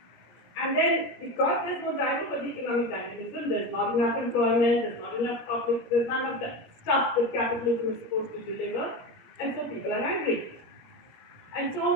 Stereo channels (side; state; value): right; late; 17 ms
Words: And then, because there's no driver for the economic dynamism, there's not enough employment, there's not enough public, there's none of the stuff that capitalism is supposed to deliver, and so people are angry. And